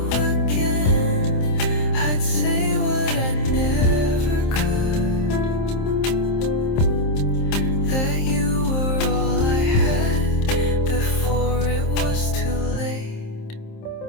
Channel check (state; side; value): late; right; 27 ms